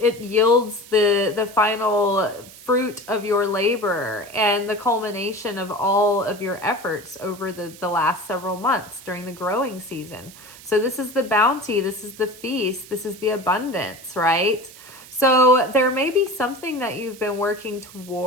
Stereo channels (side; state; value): right; noise; hiss, 19 dB below the sound